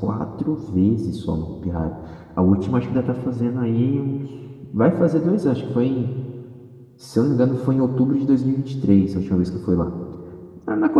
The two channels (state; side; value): identical; both; correlation 1.00